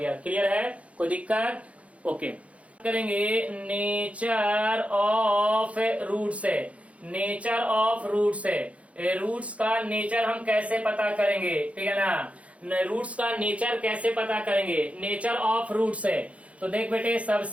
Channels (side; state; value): left; late; 0.064 ms